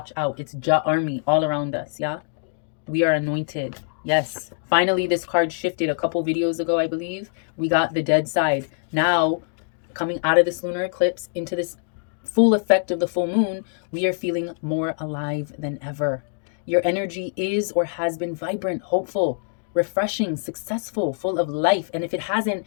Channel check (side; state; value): right; silent; digital silence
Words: out. It's Ja army all around us, yeah? We are anointed. Yes. Finally, this card shifted a couple videos ago, I believe. We got the dead side. Now, coming out of this lunar eclipse into this full effect of the full moon, we are feeling more alive than ever. Your energy is or has been vibrant, hopeful, refreshing, successful, full of life. And if it hasn't,